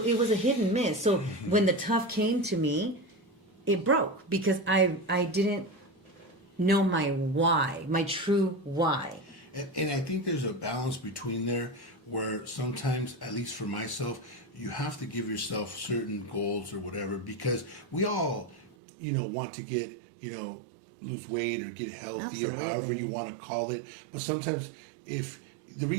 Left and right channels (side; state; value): left; drops out; at 18.7 s